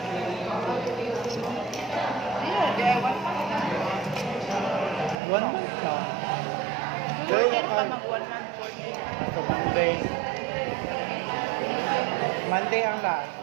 Ayun, DIY pa. One month na. 14 pa mag-1 month, 14. Sa Monday. Monday ang last.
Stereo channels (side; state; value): left; drops out; at 5.2 s